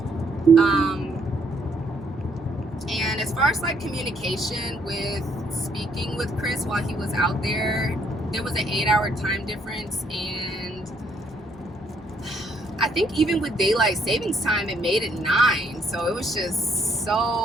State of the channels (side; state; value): both; normal; correlation 0.69